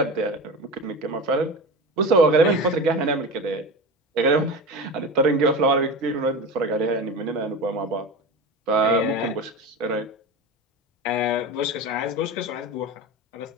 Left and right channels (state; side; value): normal; both; correlation 0.28